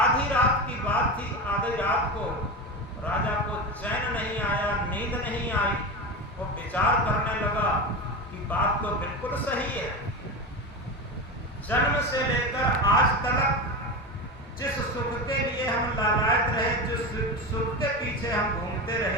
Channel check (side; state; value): both; normal; correlation 0.22